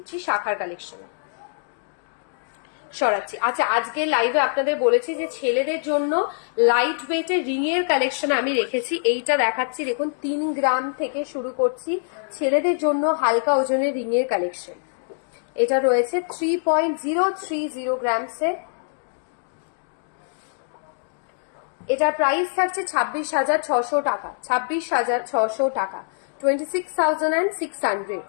শাখার কালেকশন। সরাচ্ছি। আচ্ছা, আজকে লাইভে আপনাদের বলেছি যে ছেলেদের জন্য লাইট ওয়েটের রিং এর কালেকশন আমি রেখেছি, এইটা দেখাচ্ছি। দেখুন 3 গ্রাম থেকে শুরু করছি, ছেলেদের জন্য হালকা ওজনের রিং এর কালেকশন। এটা রয়েছে 3.030 গ্রামসে। এটার প্রাইস থাকছে 26,600 টাকা, 26,600 টাকা, 26,600,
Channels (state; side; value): silent; right; digital silence